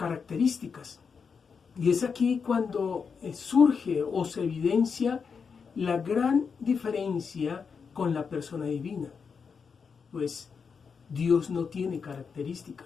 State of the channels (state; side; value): quieter; right; 5.8 dB